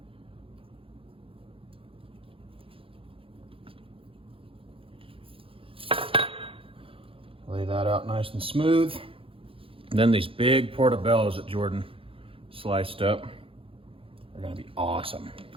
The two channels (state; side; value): late; left; 0.26 ms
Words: Lay that out nice and smooth. And then these big portobellos that Jordan sliced up are gonna be awesome.